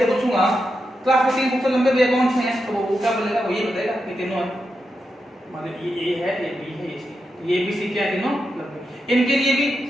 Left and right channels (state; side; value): normal; both; correlation 0.87